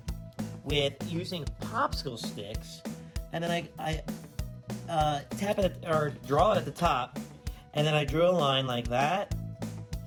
with using popsicle sticks, and then I tap it or draw it at the top, and then I drew a line like that.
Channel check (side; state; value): both; identical; correlation 1.00